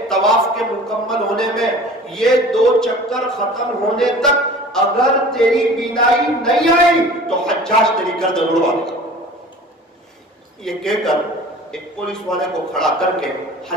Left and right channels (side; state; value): both; normal; correlation 0.43